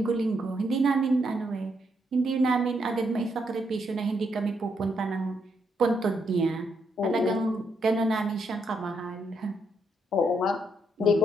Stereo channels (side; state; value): both; normal; correlation 0.77